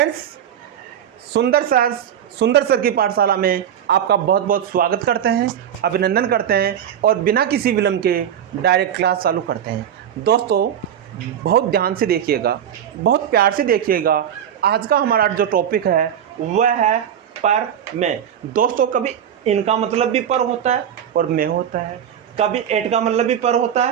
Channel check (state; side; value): quieter; left; 9.4 dB